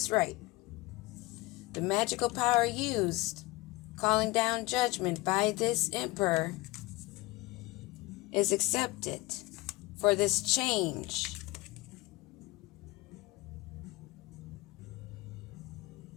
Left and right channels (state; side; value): quieter; right; 21.9 dB